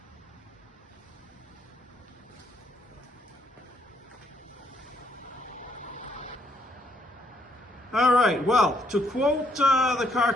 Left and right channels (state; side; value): normal; both; correlation 0.71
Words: All right, well, to quote the car